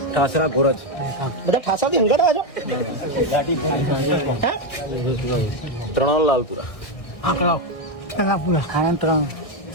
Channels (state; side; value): late; right; 1.6 ms